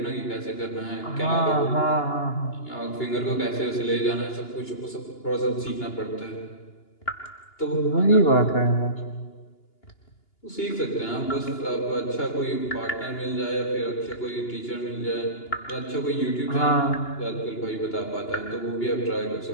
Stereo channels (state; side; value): late; right; 2.8 ms